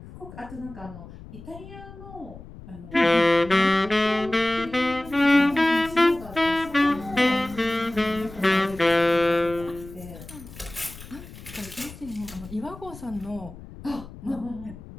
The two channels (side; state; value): left; noise; rumble, 16 dB below the sound